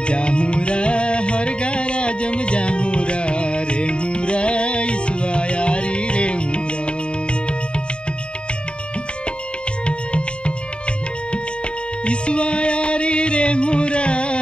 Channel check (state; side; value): late; right; 0.054 ms